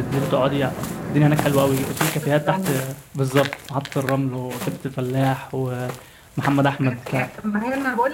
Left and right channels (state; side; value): identical; both; correlation 1.00